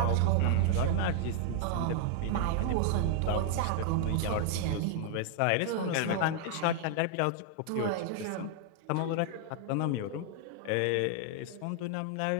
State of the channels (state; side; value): different; both; correlation 0.00